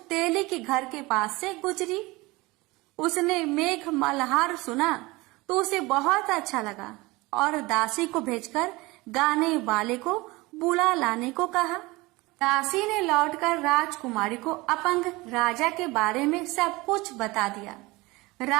तेली के घर के पास से गुजरी। उसने मेघ मल्हार सुना तो उसे बहुत अच्छा लगा और दासी को भेजकर गाने वाले को बुला लाने को कहा। दासी ने लौटकर राजकुमारी को अपंग राजा के बारे में सब कुछ बता दिया।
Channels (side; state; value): left; quieter; 22.3 dB